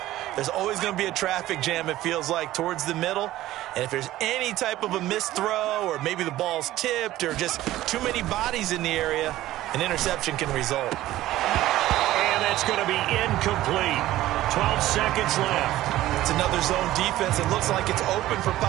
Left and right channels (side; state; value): left; quieter; 15.2 dB